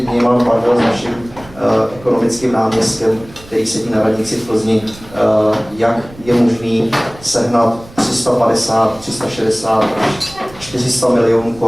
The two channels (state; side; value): noise; right; rumble, 20 dB below the sound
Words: bavil s naším ekonomickým náměstkem, který sedí na radnici v Plzni, jak je možný sehnat 350, 360, 400 milionů